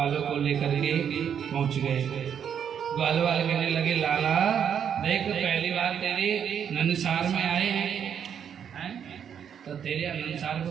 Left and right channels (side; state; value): left; quieter; 8.3 dB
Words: को लेकर के पहुंच गए। ग्वाल वाले कहने लगे लाला देख, पहली बार तेरे नंदसार में आए हैं, तो तेरे नंदसार को